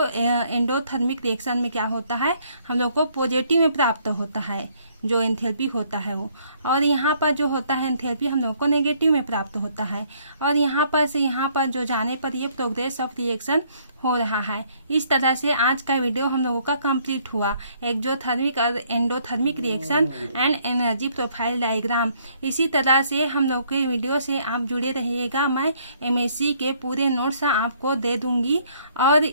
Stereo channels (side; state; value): both; inverted; correlation -0.65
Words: एंडोथर्मिक रिएक्शन में क्या होता है हम लोग को पॉजिटिव में प्राप्त होता है जो एंथैल्पी होता है वो। और यहाँ पर जो होता है एंथैल्पी हम लोग को नेगेटिव में प्राप्त होता है। और यहाँ पर से यहाँ पर जो जाने पर ये प्रोग्रेस ऑफ रिएक्शन हो रहा है। इस तरह से आज का वीडियो हम लोगों का कंप्लीट हुआ, एक्सोथर्मिक और endothermic reaction and energy profile diagram. इसी तरह से हम लोग के वीडियो से आप जुड़े रहिएगा, मैं एमएससी के पूरे नोट्स आपको दे दूंगी और